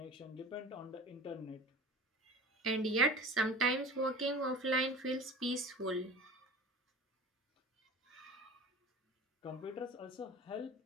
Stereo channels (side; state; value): both; normal; correlation 0.36